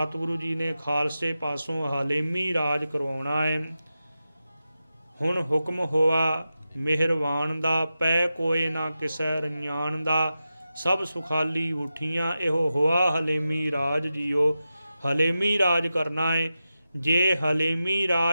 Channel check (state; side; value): inverted; both; correlation -0.92